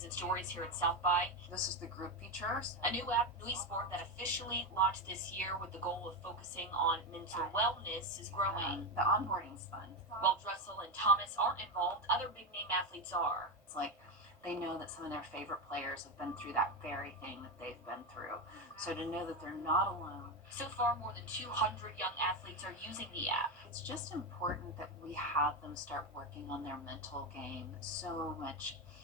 and stories here at South by. This is the group features. A new app, Nui Sport, that officially launched this year with the goal of focusing on mental wellness is growing. The onboarding's fun. While Dressel and Thomas aren't involved, other big-name athletes are. It's like they know that some of their favorite players have been through that very thing that they've been through. So to know that they're not alone. So far, more than 200 young athletes are using the app. It's just important that we have them start working on their mental game so much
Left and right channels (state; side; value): normal; both; correlation 0.12